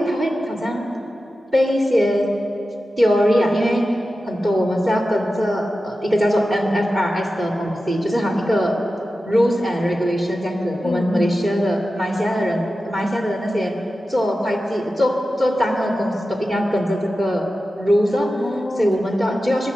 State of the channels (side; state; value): both; normal; correlation 0.93